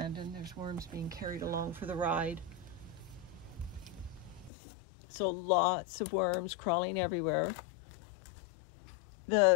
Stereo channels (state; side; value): drops out; right; at 4.5 s